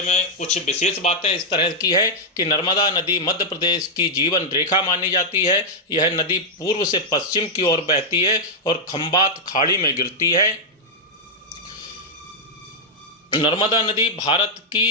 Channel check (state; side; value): normal; both; correlation -0.05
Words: में कुछ विशेष बातें इस तरह की है कि नर्मदा नदी मध्य प्रदेश की जीवन रेखा मानी जाती है। यह नदी पूर्व से पश्चिम की ओर बहती है और खंबात खाड़ी में गिरती है। नर्मदा नदी भारत की